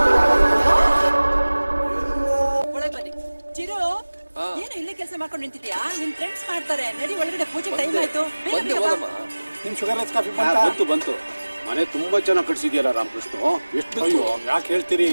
ಒಳಗೆ ಬನ್ನಿ. ಚಿರು, ಏನು ಇಲ್ಲೇ ಕೆಲಸ ಮಾಡ್ಕೊಂಡು ನಿಂತಿದ್ಯಾ? ನಿಮ್ ಫ್ರೆಂಡ್ಸ್ ಮಾಡ್ತಾರೆ. ನಡಿ ಒಳಗಡೆ, ಪೂಜೆ ಟೈಮ್ ಆಯ್ತು. ನಿಮ್ ಶುಗರ್ಲೆಸ್ ಕಾಫಿ ಬಂತು. ಮನೆ ತುಂಬಾ ಚೆನ್ನಾಗಿ ಕಟ್ಸಿದ್ಯಲ್ಲ ರಾಮಕೃಷ್ಣ. ಎಷ್ಟು? ಅಯ್ಯೋ, ಯಾಕೆ ಹೇಳ್ತೀರಿ?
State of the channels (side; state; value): both; inverted; correlation -1.00